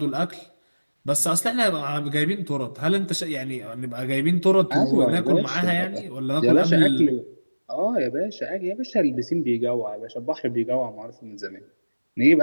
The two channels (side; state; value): both; inverted; correlation -1.00